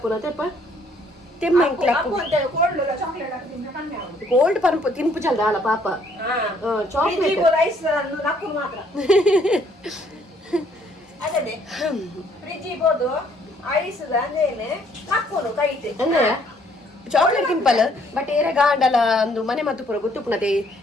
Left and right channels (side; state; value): both; normal; correlation 0.64